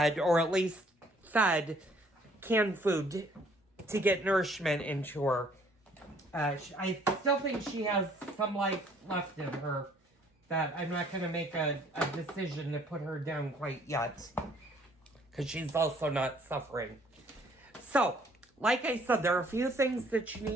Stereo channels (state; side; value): normal; both; correlation 0.61